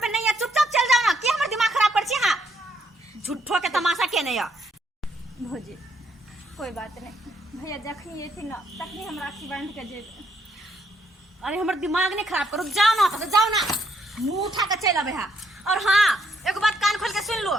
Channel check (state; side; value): normal; both; correlation 0.73